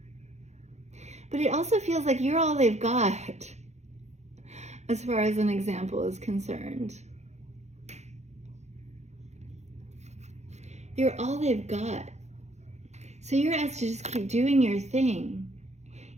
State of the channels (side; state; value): left; late; 0.33 ms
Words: But it also feels like you're all they've got, as far as an example is concerned. You're all they've got. So you're asked to just keep doing your thing,